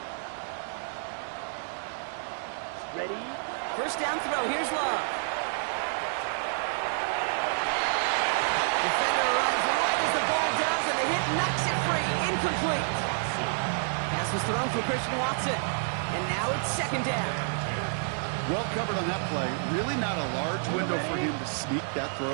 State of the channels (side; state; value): left; silent; 59 dB below the other